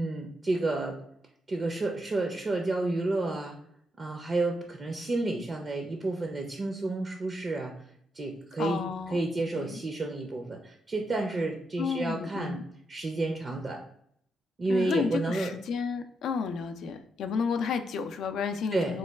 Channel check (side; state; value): both; normal; correlation 0.81